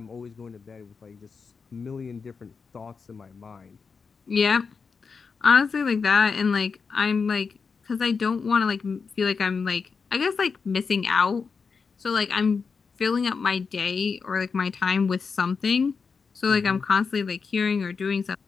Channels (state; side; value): quieter; right; 5.3 dB